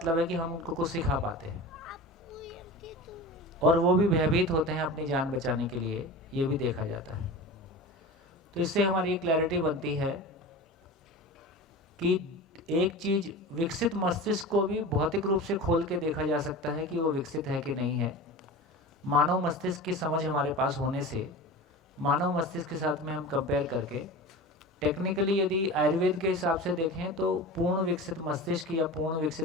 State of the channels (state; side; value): normal; both; correlation 0.32